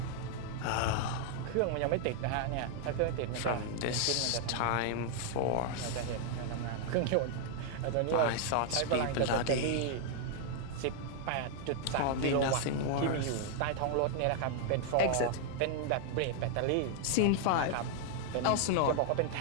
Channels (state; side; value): different; both; correlation 0.00